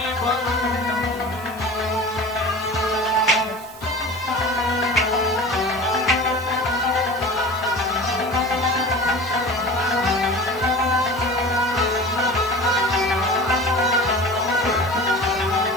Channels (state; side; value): noise; right; hiss, 22 dB below the sound